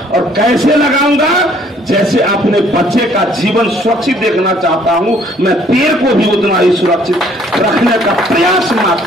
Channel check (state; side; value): normal; both; correlation 0.61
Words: और कैसे लगाऊंगा? जैसे अपने बच्चे का जीवन सुरक्षित देखना चाहता हूं, मैं पेड़ को भी उतना ही सुरक्षित रखने का प्रयास